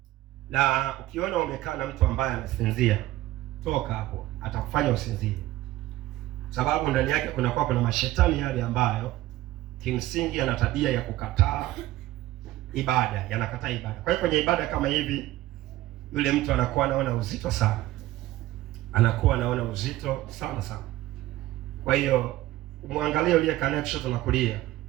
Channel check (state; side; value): quieter; left; 16.0 dB